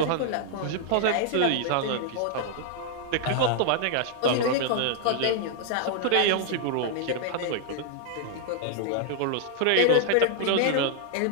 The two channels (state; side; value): different; both; correlation -0.01